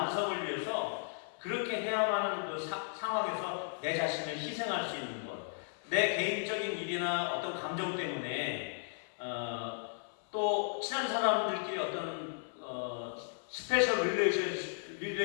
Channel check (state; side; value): silent; right; 54 dB below the other